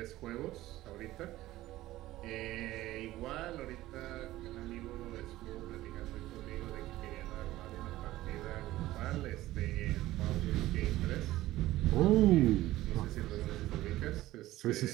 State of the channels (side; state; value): left; quieter; 16.1 dB